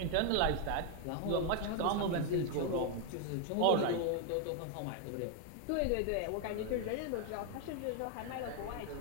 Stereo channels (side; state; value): both; different; correlation 0.01